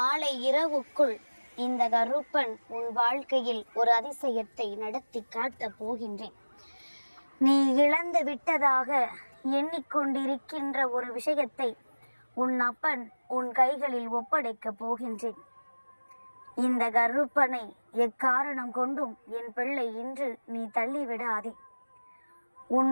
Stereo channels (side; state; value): both; inverted; correlation -1.00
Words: இரவுக்குள் இந்த கருப்பன் உன் வாழ்க்கையில் ஒரு அதிசயத்தை நடத்தி காட்டப் போகின்றேன். நீ இழந்து விட்டதாக எண்ணிக்கொண்டிருக்கின்ற ஒரு விஷயத்தை உன் அப்பன் உன் கைகளில் ஒப்படைக்கப் போகின்றேன். இந்த கருப்பனை எக்காரணம் கொண்டும் என் பிள்ளை இன்று நீ தள்ளிவிடாதே.